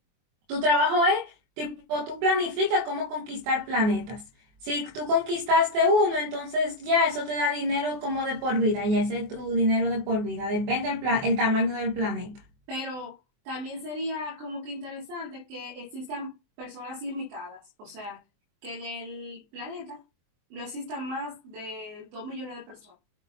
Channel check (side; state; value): left; late; 24 ms